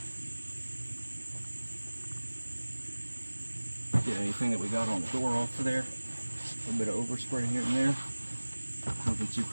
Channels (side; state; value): both; inverted; correlation -1.00